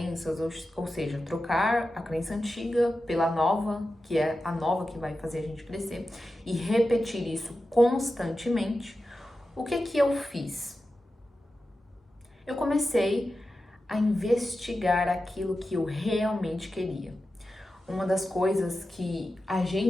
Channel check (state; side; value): normal; both; correlation 0.92